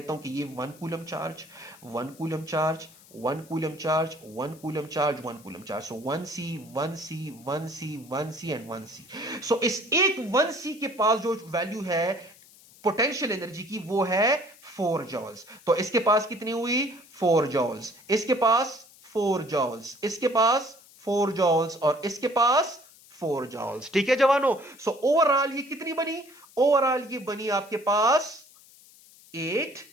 हूं कि ये 1 coulomb charge, 1 coulomb charge, 1 coulomb charge, 1 coulomb charge, 1 coulomb charge. So 1c 1c 1c 1c and 1c। सो इस एक 1c के पास जो वैल्यू है पोटेंशियल एनर्जी की वो है 4 जॉल्स। तो इसके पास कितनी हुई 4 जॉल्स, इसके पास 4 जॉल्स, इसके पास 4 जॉल्स और इसके पास 4 जॉल्स। ठीक है जवानों, सो ओवरऑल ये कितनी बनी, ओवरऑल ये बनी आपके पास 8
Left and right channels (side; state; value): left; noise; hiss, 24 dB below the sound